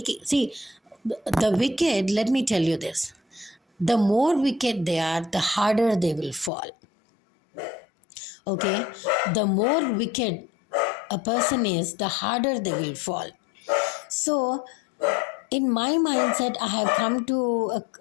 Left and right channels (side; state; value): right; drops out; at 6.5 s